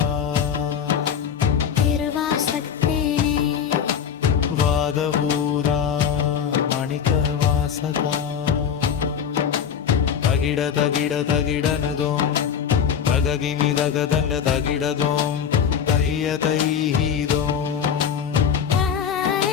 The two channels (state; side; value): quieter; right; 7.9 dB